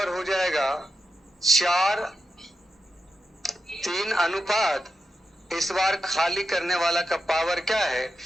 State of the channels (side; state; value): both; normal; correlation 0.88